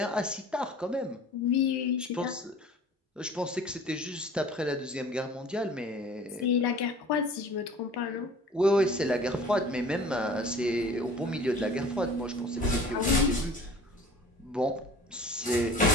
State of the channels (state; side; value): normal; both; correlation 0.46